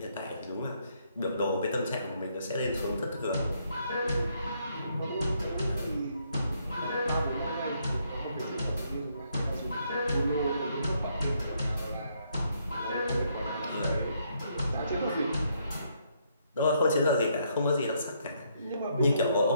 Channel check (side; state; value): both; inverted; correlation -0.73